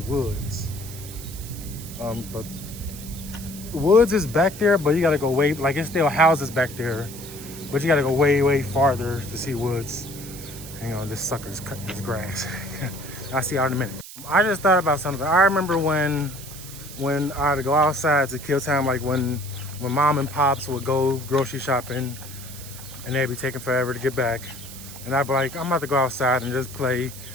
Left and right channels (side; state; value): right; noise; hiss, 14 dB below the sound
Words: But woods is back there, but you gotta go way, like it's still houses back there, but you gotta go way farther to see woods. Hang on, this sucker's cutting his grass. I'll see y'all in a minute. I just thought about something. I remember when I had to go outside to kill time, like when mom and pops would go grocery shopping and they'd be taking forever to get back. And I'd be like, I'm about to go outside and just play